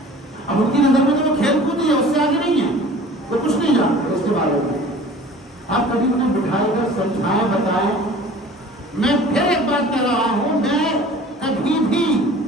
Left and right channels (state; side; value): normal; both; correlation 0.45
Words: اب ان کی نظر میں تو وہ کھیل کود ہی ہے, اس سے آگے نہیں ہے, وہ کچھ نہیں جانتے اس کے بارے میں. آپ کبھی انہیں بٹھائے کر سمجھائیں بتائیں. میں پھر ایک بات کہہ رہا ہوں, میں کبھی بھی